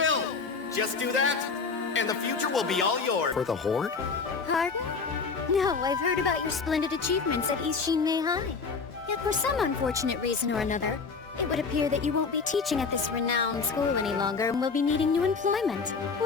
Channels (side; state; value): right; quieter; 4.9 dB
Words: Just do that, and the future will be all yours. For the Horde? Pardon? No, I've heard about your splendid achievements at East Shinmei High. Yet for some unfortunate reason or another, it would appear that you won't be teaching at this renowned school any longer and will be needing new employment.